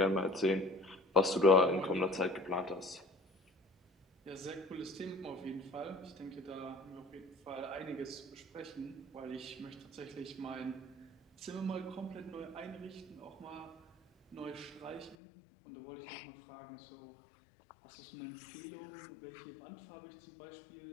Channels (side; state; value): right; drops out; at 15.2 s